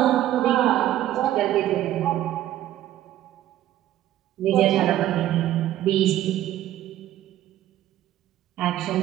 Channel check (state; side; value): quieter; left; 13.1 dB